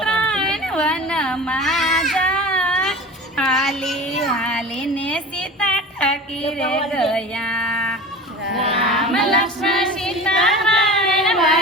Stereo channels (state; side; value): normal; both; correlation 0.34